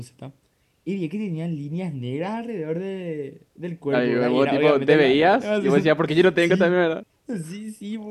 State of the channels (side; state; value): both; identical; correlation 1.00